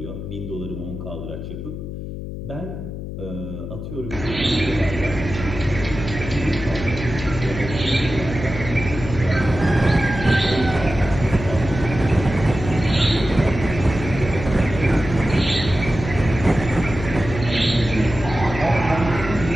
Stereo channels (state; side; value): noise; left; hum, 8 dB below the sound